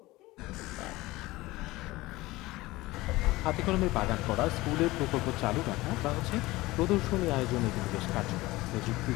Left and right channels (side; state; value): right; quieter; 19.5 dB